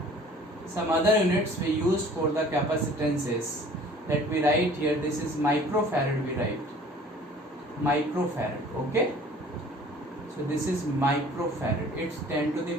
capacitance is, let me write here, this is microfarad. We write microfarad. Okay, so this is microfarad. It's 10 to the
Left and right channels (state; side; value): normal; both; correlation 0.50